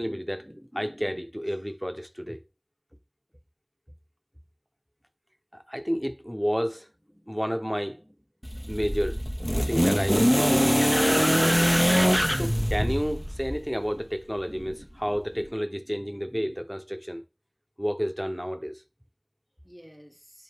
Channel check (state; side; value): identical; both; correlation 1.00